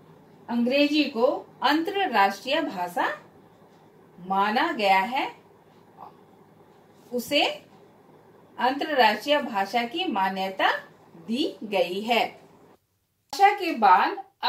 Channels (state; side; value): identical; both; correlation 1.00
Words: अंग्रेजी को अंतरराष्ट्रीय भाषा माना गया है, उसे अंतरराष्ट्रीय भाषा की मान्यता दी गई है। भाषा के बाद